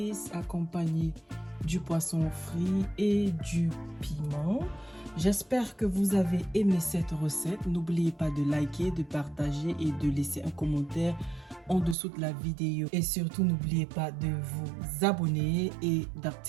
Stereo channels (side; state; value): left; drops out; at 12.0 s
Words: accompagnés du poisson frit et du piment. J'espère que vous avez aimé cette recette. N'oubliez pas de liker, de partager et de laisser un commentaire en dessous de la vidéo. Et surtout, n'oubliez pas de vous abonner et